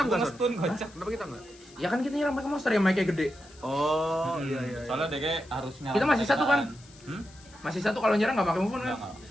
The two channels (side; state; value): left; noise; hiss, 24 dB below the sound